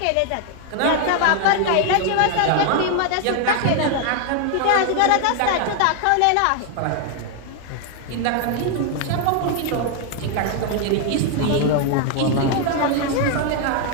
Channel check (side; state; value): both; different; correlation 0.00